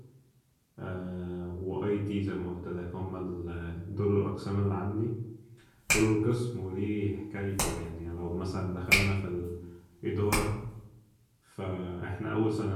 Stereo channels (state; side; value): identical; both; correlation 1.00